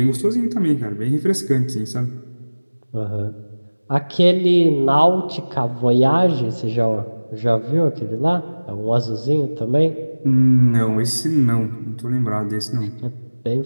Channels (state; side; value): inverted; both; correlation -1.00